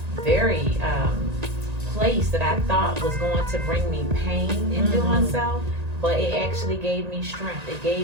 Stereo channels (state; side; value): late; left; 1.9 ms